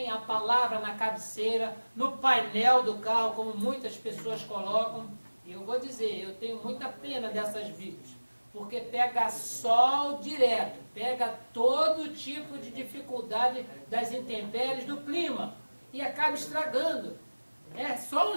a palavra na cabeceira, no painel do carro, como muitas pessoas colocam. E eu vou dizer, eu tenho muita pena dessas Bíblias, porque pega sol direto, pega todo tipo de dificuldade das intempéries do clima e acaba estragando. É só um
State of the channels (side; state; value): both; inverted; correlation -1.00